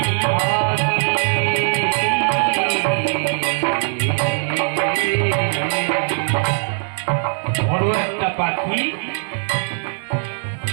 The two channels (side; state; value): left; silent; digital silence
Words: বড় একটা পাখি